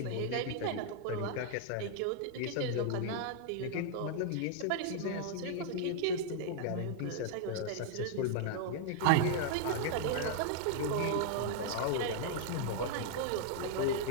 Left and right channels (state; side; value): different; both; correlation -0.01